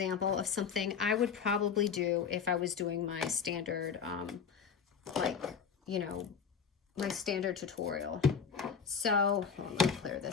of something I would probably do if I was doing my standard, like, you know, my standard tutorial. So let me clear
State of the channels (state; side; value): quieter; right; 6.6 dB